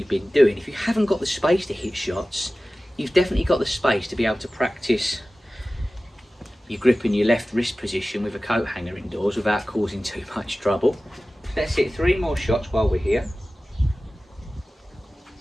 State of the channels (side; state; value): both; normal; correlation 0.96